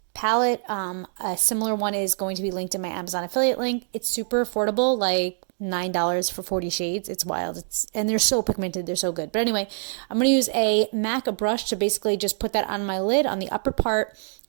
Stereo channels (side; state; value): left; silent; digital silence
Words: palette. A similar one is going to be linked in my Amazon affiliate link. It's super affordable, like $9 for 40 shades. It's wild. And they're so pigmented. They're so good. But anyway, I'm going to use a MAC brush to basically just put that on my lid on the upper part.